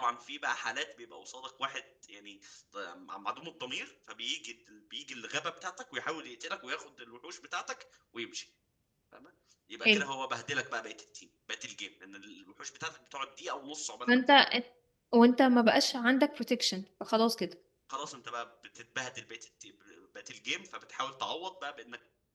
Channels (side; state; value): both; identical; correlation 1.00